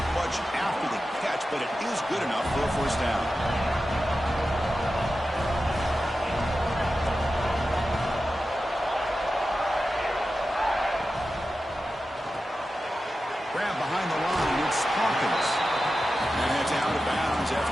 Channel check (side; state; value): both; normal; correlation 0.92